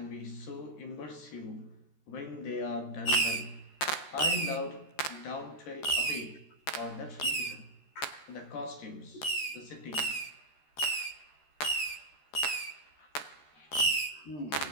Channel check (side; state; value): right; late; 13 ms